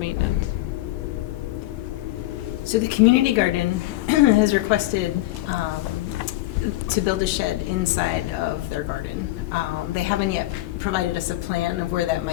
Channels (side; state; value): right; quieter; 17.2 dB